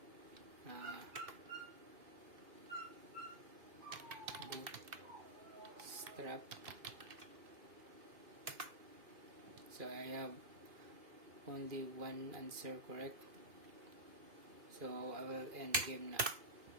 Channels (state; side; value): late; left; 2.5 ms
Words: Bootstrap. So I have only 1 answer correct. So I will end the game now.